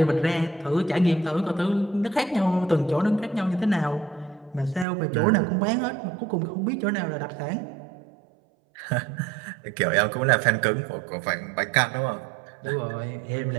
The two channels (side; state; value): left; drops out; at 4.9 s